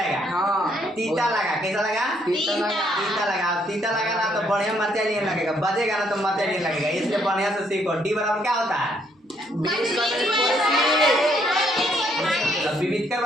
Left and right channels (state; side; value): normal; both; correlation 0.70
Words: हाँ तीता लगा कैसा लगा तीता लगा ना तो बढ़िया मरचा नहीं लगेगा बजेगा ना तो मरचा नहीं लगेगा इसलिए बढ़िया से सीखो। डी बराबर क्या होता है विविधकर